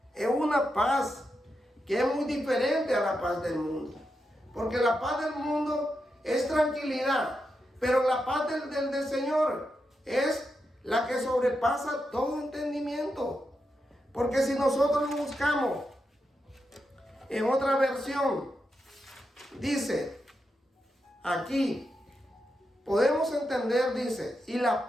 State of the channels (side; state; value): both; normal; correlation 0.86